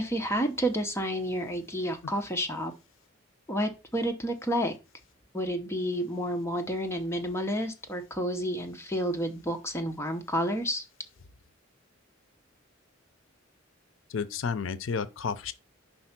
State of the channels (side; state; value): both; normal; correlation 0.50